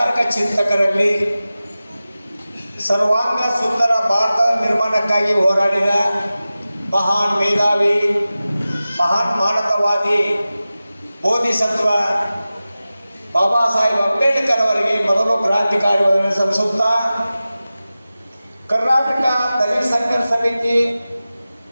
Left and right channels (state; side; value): inverted; both; correlation -0.96